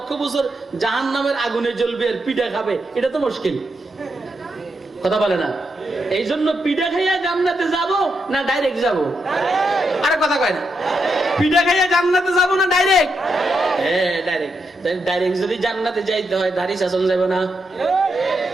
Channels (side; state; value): both; normal; correlation 0.83